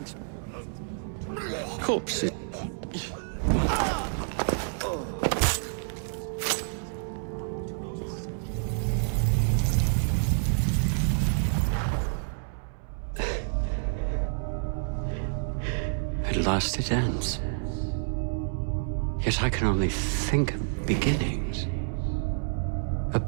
Corpses. At last it ends. Yet I can only think of beginnings. A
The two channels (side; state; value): left; silent; 59 dB below the other